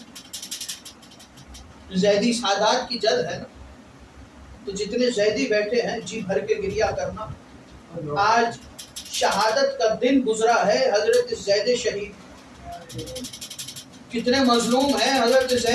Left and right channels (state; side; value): identical; both; correlation 1.00